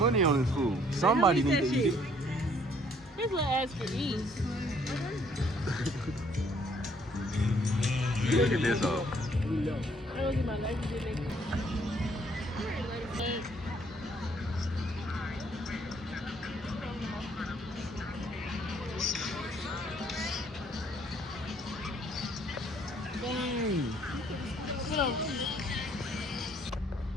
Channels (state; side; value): normal; both; correlation 0.64